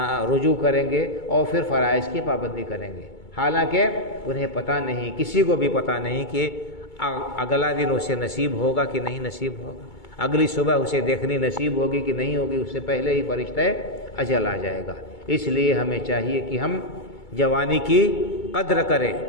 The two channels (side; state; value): right; late; 2.2 ms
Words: رجوع کریں گے اور پھر فرائض کی پابندی کریں گے۔ حالانکہ انہیں پتہ نہیں، کسی کو بھی پتہ نہیں کہ اگلا دن اسے نصیب ہوگا کہ نہیں نصیب ہوگا، اگلی صبح اسے دیکھنی نصیب ہوگی کہ نہیں ہوگی، اس سے پہلے ہی فرشتہ اجل آ جائے گا۔ اس لیے ہمیں چاہیے کہ ہم جوانی کی قدر کریں،